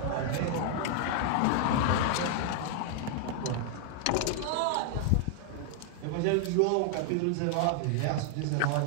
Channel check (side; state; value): both; different; correlation 0.00